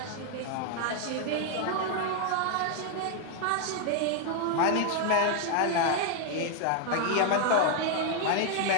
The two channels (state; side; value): different; both; correlation 0.00